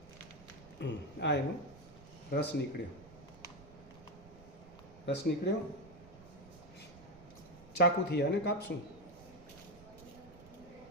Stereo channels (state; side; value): noise; right; rumble, 20 dB below the sound